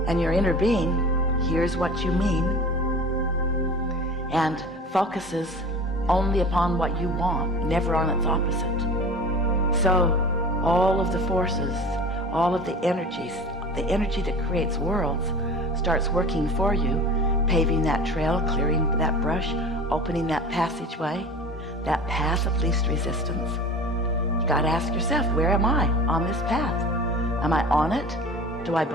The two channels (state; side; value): normal; both; correlation 0.38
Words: and your inner being hears what you mean and focuses only upon what you want, never on its opposite. So all of the forces, all of the energies, the energy that creates worlds starts working for you, paving that trail, clearing that brush, opening that passageway, that path of least resistance. You got to ask yourself, where am I on this path? Am I on it? Do I